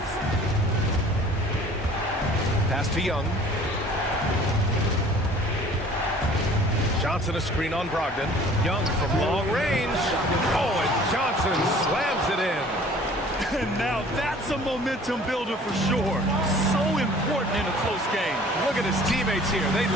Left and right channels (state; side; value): normal; both; correlation 0.50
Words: Pass to Young. Johnson a screen on Brogdon. Young from long range. Oh, and Johnson slams it in. And now that's a momentum builder for sure. So important in a close game. Look at his teammates here. They